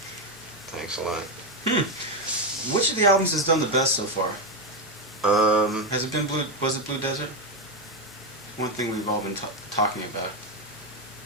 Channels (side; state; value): both; normal; correlation 0.08